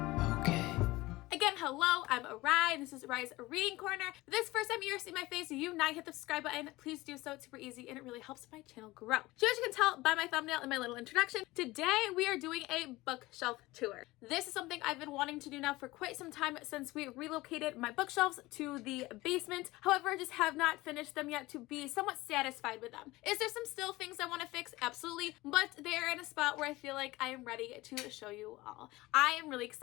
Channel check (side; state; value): right; quieter; 19.8 dB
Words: okay. Again, hello, I'm Rai, and this is Rai's Reading Corner. If this is the first time you're seeing my face, you not hit the subscribe button, please do so. It's super easy and it really helps my channel grow. So as you can tell by my thumbnail and my little introduction, today we are doing a bookshelf tour. This is something I've been wanting to do now for quite some time since we relocated my bookshelves to the basement. However, I just have not finished them yet to be somewhat satisfied with them. Is there some still things I want to fix? Absolutely, but they're in a spot where I feel like I am ready to show you all. I am really